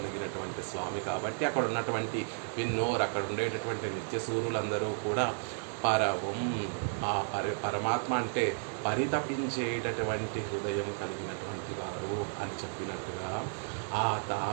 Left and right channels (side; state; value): left; silent; 56 dB below the other